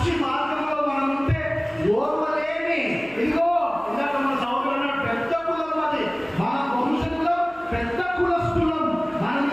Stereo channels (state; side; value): noise; right; hum, 26 dB below the sound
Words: మార్గంలో మనం ఉంటే ఓర్వలేని, ఇదిగో ఇందాక మన సౌకర్యం పెద్ద కులం, అది మన వంశంలో పెద్ద కులస్తులం. మన